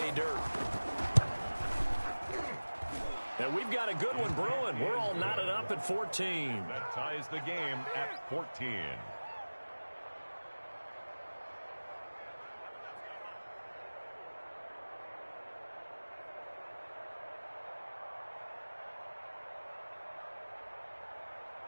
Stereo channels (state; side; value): inverted; both; correlation -1.00